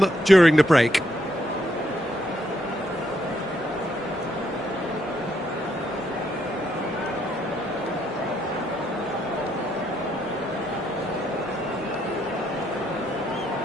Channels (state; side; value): normal; both; correlation 0.75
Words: during the break.